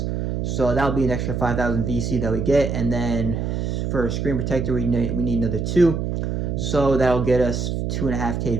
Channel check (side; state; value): right; noise; hum, 2 dB below the sound